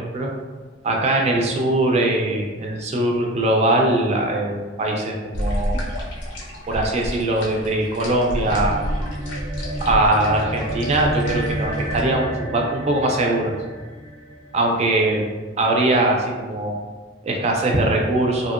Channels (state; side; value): normal; both; correlation 0.25